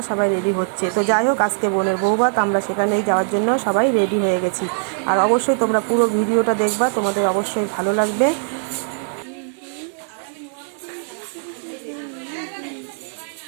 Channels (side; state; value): left; silent; 57 dB below the other